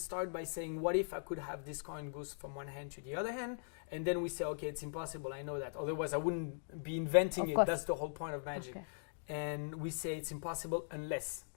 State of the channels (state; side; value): silent; right; digital silence